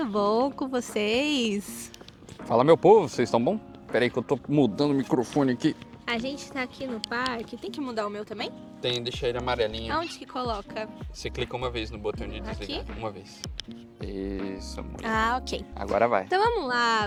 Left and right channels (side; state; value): both; identical; correlation 1.00